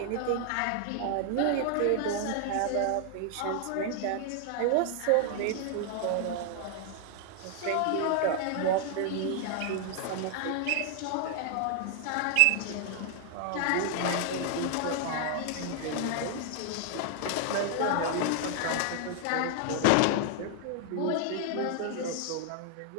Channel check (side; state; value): both; different; correlation 0.00